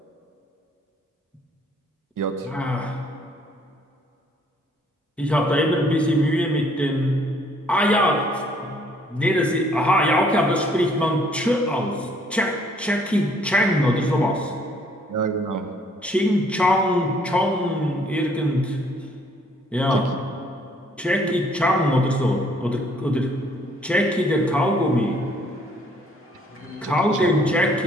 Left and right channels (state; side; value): normal; both; correlation 0.63